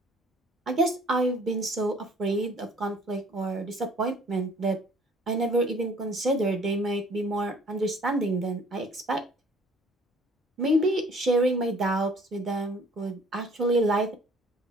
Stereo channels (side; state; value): both; normal; correlation 0.55